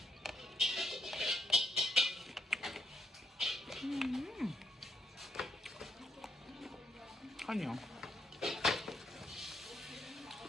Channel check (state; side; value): normal; both; correlation 0.76